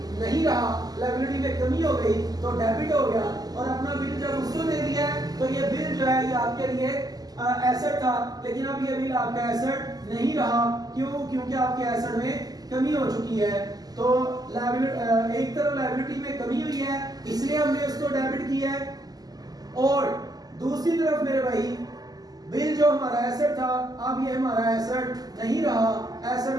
नहीं रहा, लायबिलिटी में कमी हो गई तो डेबिट हो गया और अपना बिल जब उसको दे दिया तो ये बिल जो है ये आपके लिए एसेट था लेकिन अब ये बिल आपका एसेट नहीं रहा। क्यों? क्योंकि आपके एसेट में कमी हो चुकी है। तो एक तरफ लायबिलिटी में कमी हुई है इसलिए हमने उसको डेबिट किया है और दूसरी तरफ मेरे भाई बिल जो हमारा एसेट था अब ये हमारा एसेट नहीं रहा, एसेट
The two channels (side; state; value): left; late; 0.18 ms